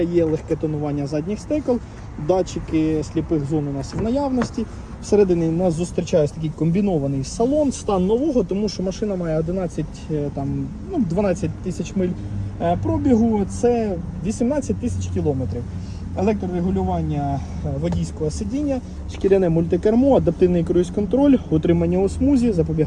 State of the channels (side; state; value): both; identical; correlation 1.00